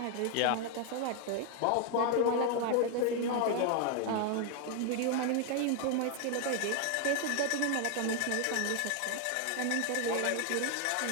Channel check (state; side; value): different; both; correlation 0.01